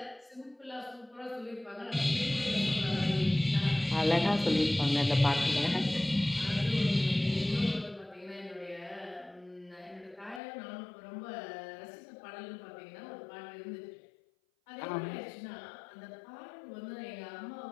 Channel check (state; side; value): drops out; right; at 10.4 s